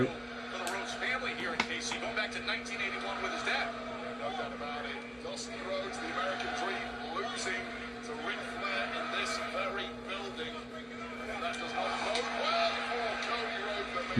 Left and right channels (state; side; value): identical; both; correlation 1.00